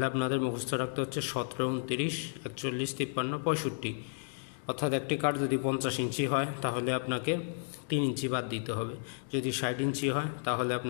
আপনাদের মুখস্থ রাখতে হচ্ছে 17, 29, 41, 53, 65। অর্থাৎ একটি কাঠ যদি 50 ইঞ্চি হয় তাহলে আপনাকে 3 ইঞ্চি বাদ দিতে হবে, যদি 60 ইঞ্চি হয় তাহলে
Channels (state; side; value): silent; right; digital silence